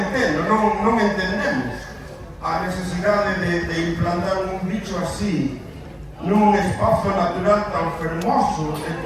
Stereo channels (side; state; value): both; identical; correlation 1.00